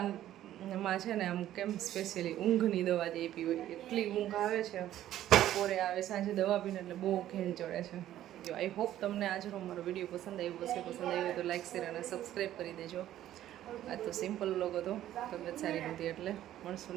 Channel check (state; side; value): quieter; left; 12.7 dB